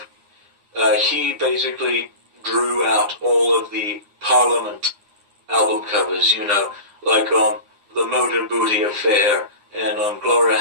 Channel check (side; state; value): left; late; 9.8 ms